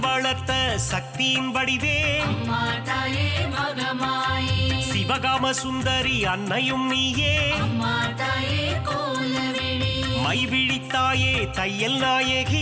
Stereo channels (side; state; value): both; identical; correlation 1.00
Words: வளர்த்த சக்தியின் வடிவே அம்மா தாயே மகமாயி சிவகாம சுந்தரி அன்னையும் நீயே அம்மா தாயே கோலவிழி மைவிழித்தாயே தையல்